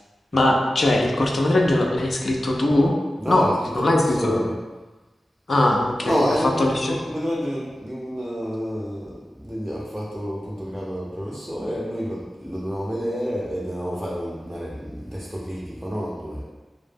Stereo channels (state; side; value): normal; both; correlation 0.93